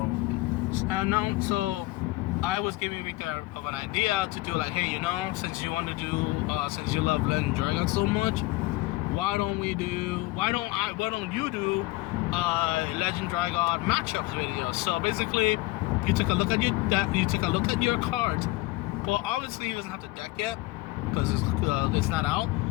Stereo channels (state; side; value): quieter; right; 20.7 dB